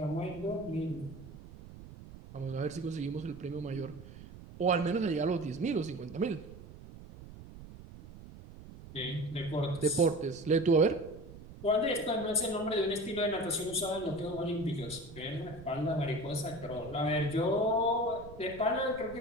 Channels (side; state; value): right; noise; rumble, 16 dB below the sound